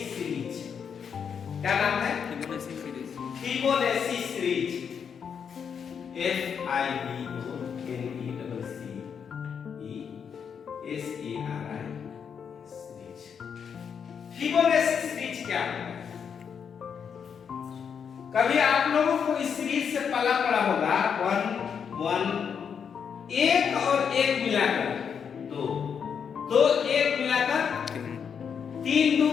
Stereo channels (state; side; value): quieter; right; 7.1 dB